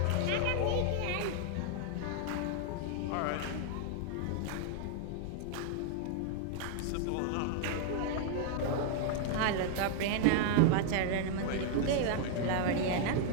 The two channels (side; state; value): both; different; correlation 0.00